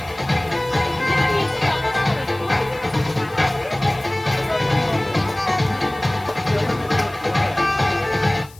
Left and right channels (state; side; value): noise; left; hiss, 24 dB below the sound